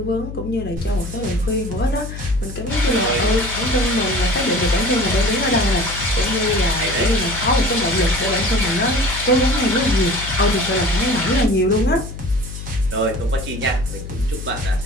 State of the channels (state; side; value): noise; left; hum, 9 dB below the sound